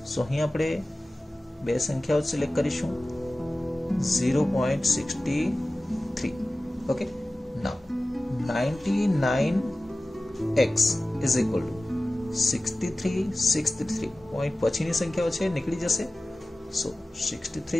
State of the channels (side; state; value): both; normal; correlation 0.96